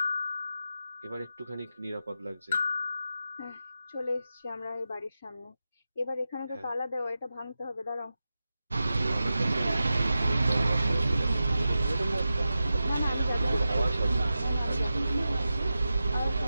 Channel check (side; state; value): both; inverted; correlation -0.92